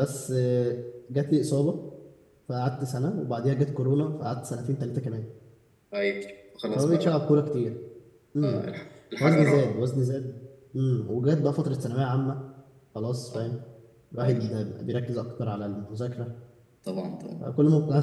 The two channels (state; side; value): identical; both; correlation 1.00